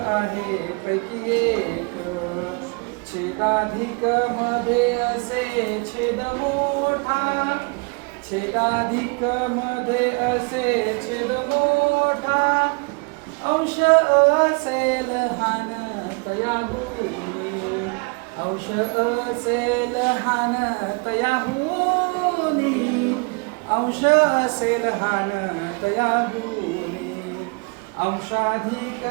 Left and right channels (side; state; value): left; quieter; 33.4 dB